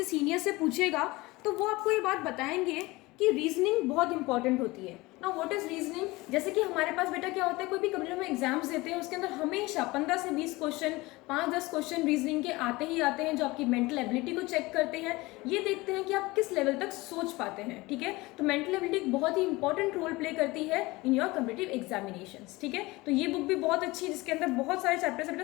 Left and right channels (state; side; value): quieter; right; 21.5 dB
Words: सीनियर से पूछेगा तो वो आपको ये बात बताएंगे कि रीजनिंग बहुत इंपॉर्टेंट होती है। Now what is reasoning? जैसे कि हमारे पास बेटा क्या होता है, कोई भी कभी हम एग्जाम्स देते हैं उसके अंदर हमेशा 15 से 20 क्वेश्चन, 5-10 क्वेश्चन रीजनिंग के आते ही आते हैं, जो आपकी मेंटल एबिलिटी को चेक करते हैं। ये देखते हैं कि आप किस लेवल तक सोच पाते हैं। ठीक है, तो मेंटल एबिलिटी एक बहुत ही इंपॉर्टेंट रोल प्ले करती है इन योर कॉम्पिटिटिव एग्जामिनेशंस। ठीक है, तो ये बुक भी बहुत अच्छी है जिसके अंदर बहुत सारे चैप्टर्स है